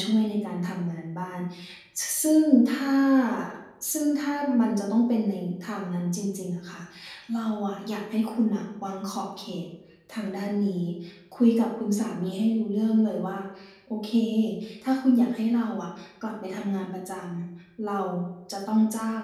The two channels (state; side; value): identical; both; correlation 1.00